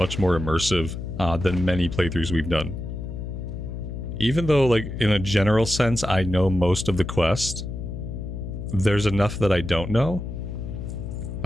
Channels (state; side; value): noise; left; hum, 7 dB below the sound